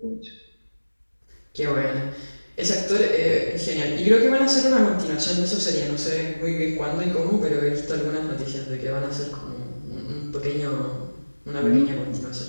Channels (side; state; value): both; inverted; correlation -1.00